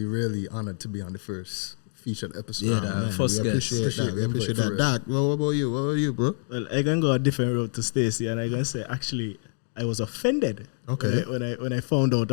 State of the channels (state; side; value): silent; right; 61 dB below the other